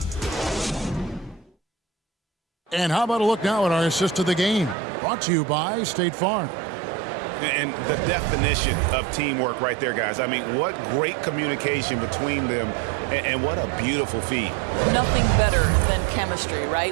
And how about a look now at our assist of the game? Brought to you by State Farm. And the definition of teamwork right there, guys. I mean, what great communication between them, and what a beautiful feed. Nothing better than chemistry,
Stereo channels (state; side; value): drops out; left; at 4.8 s